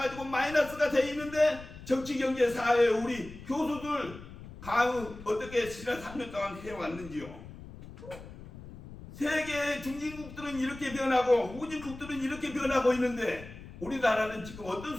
마이너스가 돼 있는데, 정치, 경제, 사회 우리 교수들 강의 어떻게 지난 3년 동안 해왔는지요. 세계 중진국들은 이렇게 변하고 후진국들은 이렇게 변하고 있는데, 우리나라는 지금 어떤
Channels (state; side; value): noise; left; rumble, 15 dB below the sound